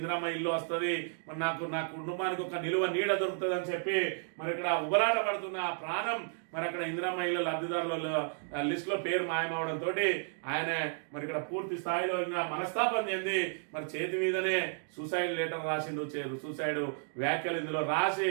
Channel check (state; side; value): silent; left; 56 dB below the other